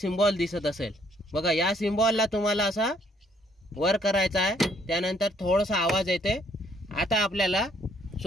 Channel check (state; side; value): normal; both; correlation 0.66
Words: दिसत असेल। बघा या सिम्बॉलला तुम्हाला असा वर करायचा आहे, त्यानंतर थोडासा आवाज येते। आता आपल्याला